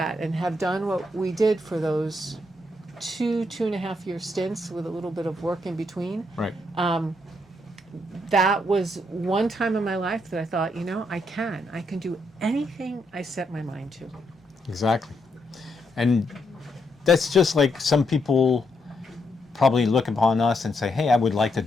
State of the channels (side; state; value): both; normal; correlation 0.78